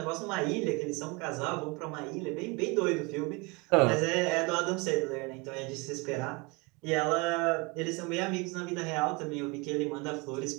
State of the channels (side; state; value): left; quieter; 27.8 dB